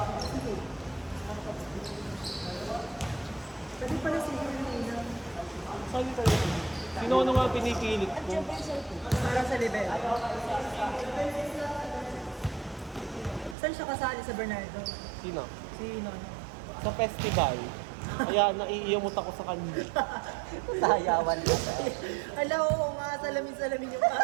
Pwede pala si Helena. Saan yung talaga? Sino ano nga pinipilit ko? Para sa level. Saan siya kasali sa Bernardo? Sino? Si Nono. Sa festival. Kaya naiiyamot ako sa kanya. Sayawan ka. Ala, oo nga, salamin-salamin yung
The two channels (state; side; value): drops out; left; at 13.6 s